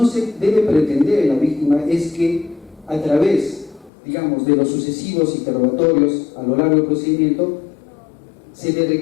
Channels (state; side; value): drops out; right; at 3.9 s